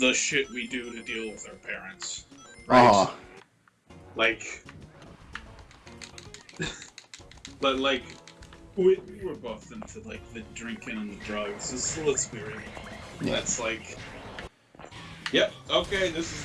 shit we do to deal with our parents. Right? Like... but like... We were both into, like, the drinking and the drugs. So let's be real. Yeah. That's like... Yep, okay, this is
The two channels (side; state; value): both; identical; correlation 1.00